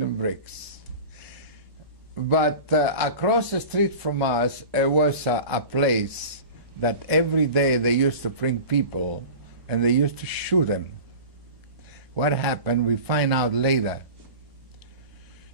bricks. But across the street from us, it was a place that every day they used to bring people and they used to shoot them. What happened, we find out later.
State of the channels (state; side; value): late; left; 1.0 ms